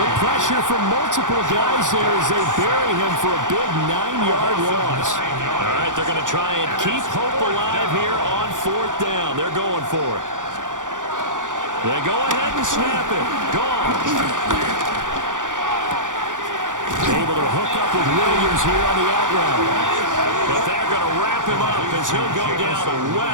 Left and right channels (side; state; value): left; late; 0.87 ms